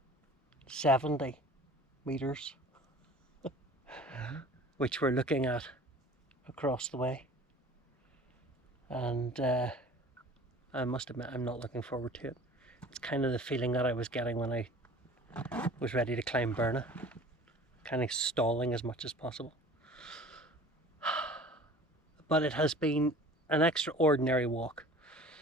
metres, which we're looking at across the way. And I must admit, I'm not looking forward to it. It's kind of the feeling that I was getting when I was ready to climb Mourne, kind of stalling as much as possible. But it has been an extraordinary walk.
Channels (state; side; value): normal; both; correlation 0.44